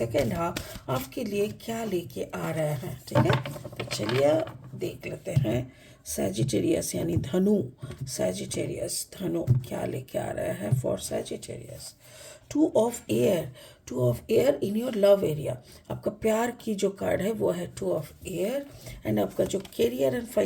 हाफ आपके लिए क्या लेके आ रहे हैं. ठीक है, तो चलिए देख लेते हैं. सैजिटेरियस यानी धनु, सैजिटेरियस धनु क्या लेके आ रहा है for Sagittarius. Two of air, two of air in your love area. आपका प्यार की जो कार्ड है वो है टू ऑफ एयर. एंड आपका जो करियर एंड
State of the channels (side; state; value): both; identical; correlation 1.00